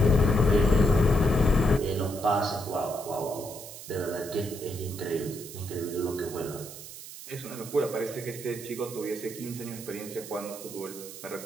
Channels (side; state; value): right; noise; hiss, 13 dB below the sound